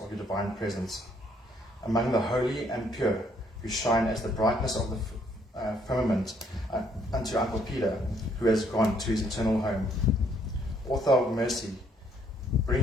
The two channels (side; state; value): both; normal; correlation 0.67